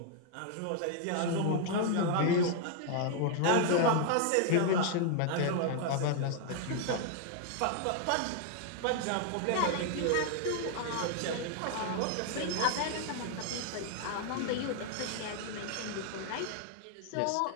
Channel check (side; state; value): both; different; correlation 0.00